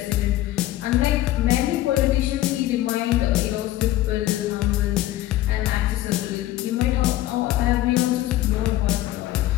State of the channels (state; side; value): quieter; right; 15.0 dB